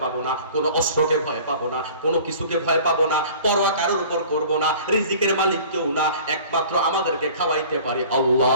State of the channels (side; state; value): both; inverted; correlation -0.46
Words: পাবো না, কোনো অস্ত্রকে ভয় পাবো না, কোনো কিছুকে ভয় পাবো না, পরোয়া কারোর উপর করবো না। রিজিকের মালিক কেউ না, একমাত্র আমাদেরকে খাওয়াইতে পারে